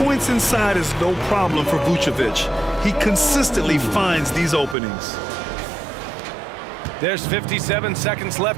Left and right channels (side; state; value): left; drops out; at 4.8 s